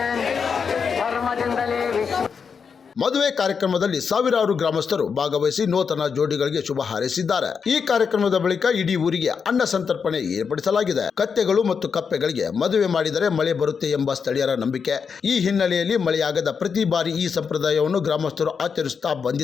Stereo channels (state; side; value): quieter; right; 6.1 dB